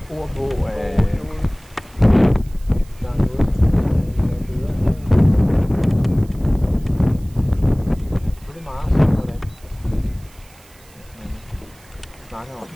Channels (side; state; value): right; noise; hiss, 27 dB below the sound